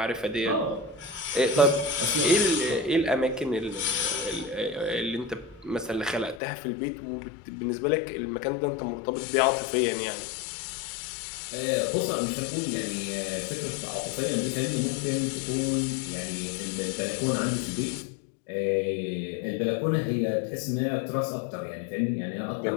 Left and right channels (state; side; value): drops out; right; at 6.4 s